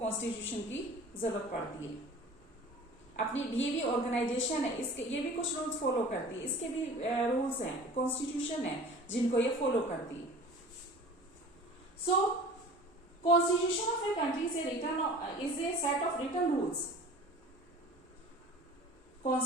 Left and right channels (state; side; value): normal; both; correlation 0.42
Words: की जरूरत पड़ती है। अपनी ये भी ऑर्गेनाइजेशन है, इसके ये भी कुछ रूल्स फॉलो करती है, इसके भी रूल्स हैं, कॉन्स्टिट्यूशन है जिनको ये फॉलो करती है। So constitution of a country is a set of written rules.